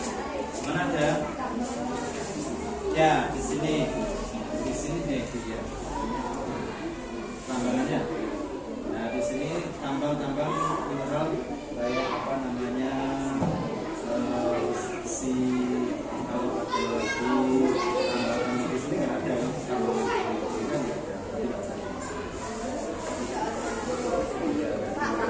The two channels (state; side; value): identical; both; correlation 1.00